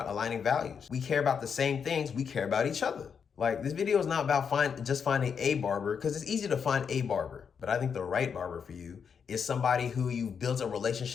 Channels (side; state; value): right; quieter; 6.7 dB